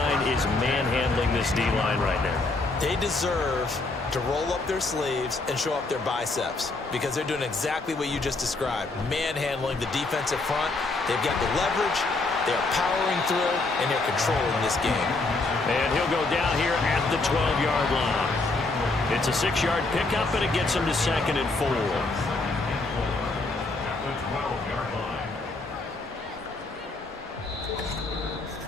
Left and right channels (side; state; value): right; quieter; 3.4 dB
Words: is manhandling this D-line right now. They deserve to roll up their sleeves and show up their biceps because they're doing exactly what you just described, manhandling the defensive front. They've got the leverage, they're powering through, and they're controlling this game. And he'll go down here at the 12-yard line. It's a 6-yard pickup, and it gets him to 2nd and 4.